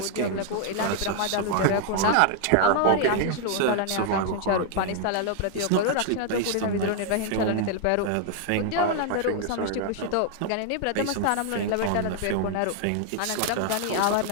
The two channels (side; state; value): both; different; correlation 0.00